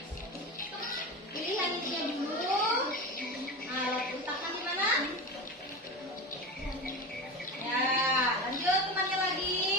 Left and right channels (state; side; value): normal; both; correlation 0.25